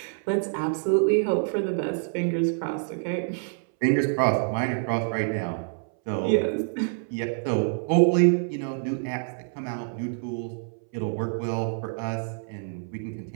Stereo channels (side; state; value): left; silent; 60 dB below the other